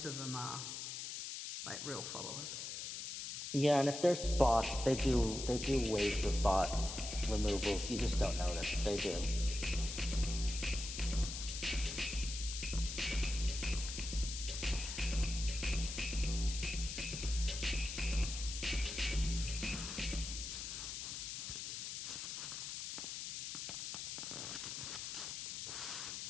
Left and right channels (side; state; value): left; noise; hiss, 5 dB below the sound